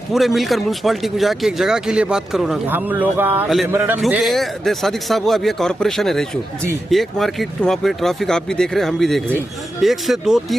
पूरे मिलकर म्यूनसिपालिटी को जाके एक जगह के लिए बात करो ना। हम लोग क्योंकि सादिक साहब वो अभी एक कॉर्पोरेशन है रायचूर जी, एक मार्केट वहाँ पे ट्रैफिक आप भी देख रहे हैं, हम भी देख रहे हैं। 1 से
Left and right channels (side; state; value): both; normal; correlation 0.90